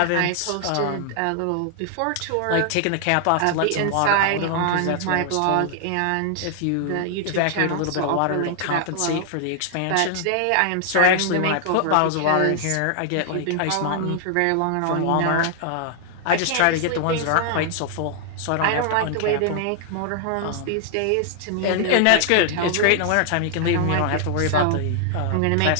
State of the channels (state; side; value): different; both; correlation 0.00